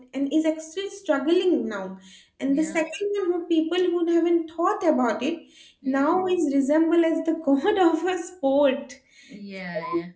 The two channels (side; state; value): both; identical; correlation 1.00